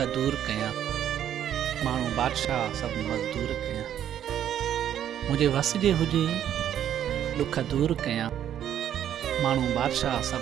दूर कयां, माण्हू बादशाह सभु मज़दूर कयां। मुंहिंजे वस जे हुजे ॾुख दूर कयां, माण्हू बादशाह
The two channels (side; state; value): left; quieter; 10.4 dB